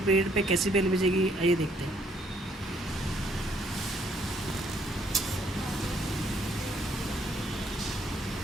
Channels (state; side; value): normal; both; correlation 0.67